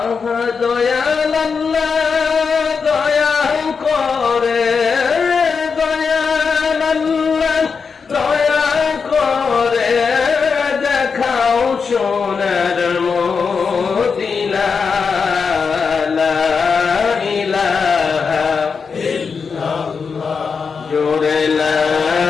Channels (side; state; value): right; quieter; 5.5 dB